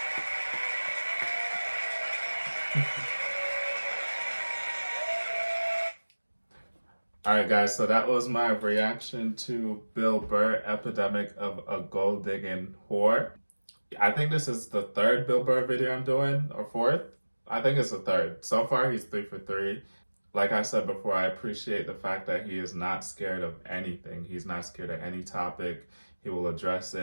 Alright guys, so that was my reaction to Bill Burr, Epidemic of a Gold Digging Whore. I think this is the 3rd Bill Burr video I'm doing, or 4th? I think it's the 3rd. So far he's 3 for 3. Like I said before, I appreciate the fact that he is not scared of anything. He's not scared of any topic. He will address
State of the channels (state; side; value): inverted; both; correlation -1.00